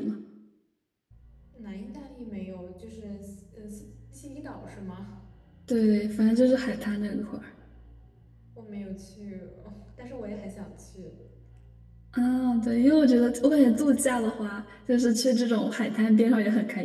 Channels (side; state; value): both; identical; correlation 1.00